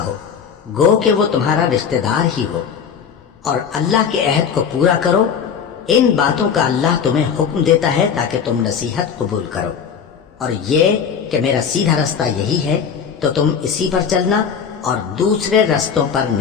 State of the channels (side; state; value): right; quieter; 7.0 dB